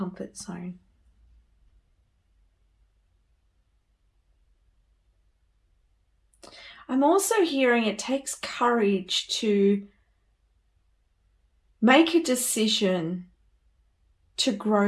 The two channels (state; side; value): identical; both; correlation 1.00